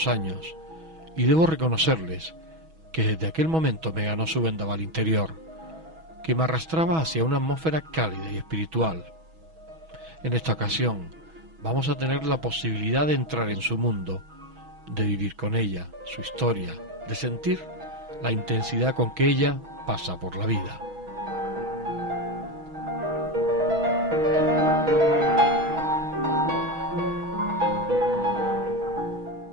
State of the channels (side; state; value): left; late; 6.2 ms